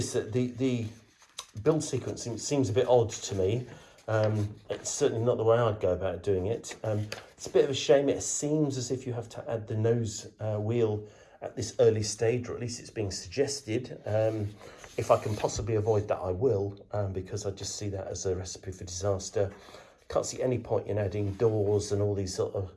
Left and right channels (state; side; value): identical; both; correlation 1.00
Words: that the build sequencing seems a bit odd to me. It's certainly not the way I'd go about doing it. It's a bit of a shame. It seems as if you have to add the nose wheel at this early stage, or at least it's being suggested. If I can possibly avoid that, I will, because I just see that as a recipe for disaster. Can't see any point in adding doors and all these sort